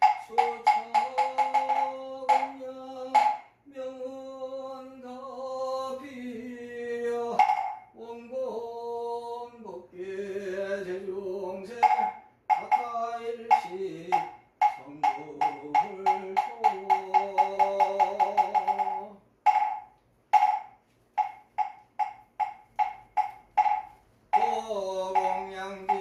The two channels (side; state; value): both; identical; correlation 1.00